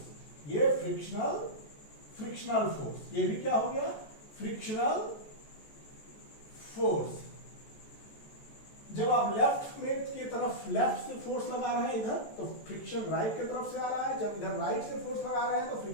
ये फ्रिक्शनल फोर्स, ये भी क्या हो गया, फ्रिक्शनल फोर्स। जब आप लेफ्ट में की तरफ लेफ्ट से फोर्स लगा रहे हैं इधर तो फ्रिक्शन राइट की तरफ से आ रहा है, जब इधर राइट से फोर्स लगा रहे हैं तो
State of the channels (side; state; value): right; late; 14 ms